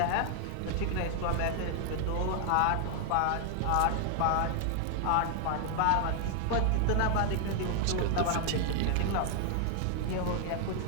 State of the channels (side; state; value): both; different; correlation 0.00